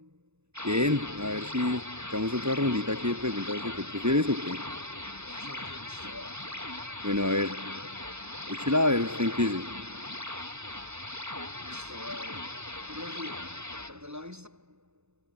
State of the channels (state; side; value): late; left; 0.81 ms